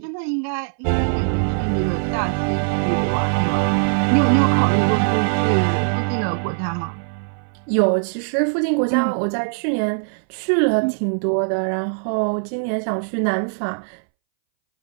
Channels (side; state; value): left; silent; 63 dB below the other